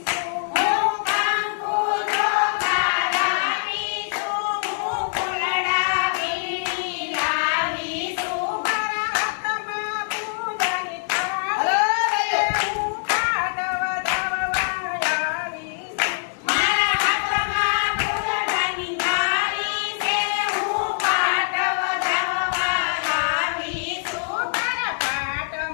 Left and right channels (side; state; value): right; silent; digital silence